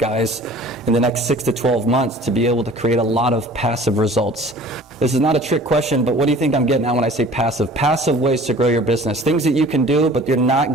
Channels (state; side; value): normal; both; correlation 0.47